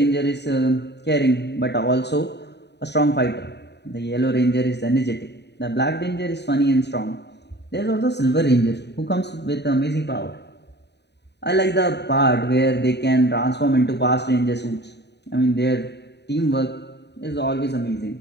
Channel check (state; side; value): late; right; 0.50 ms